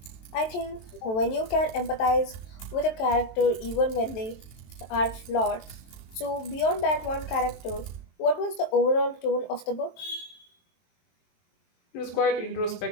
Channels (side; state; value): right; late; 23 ms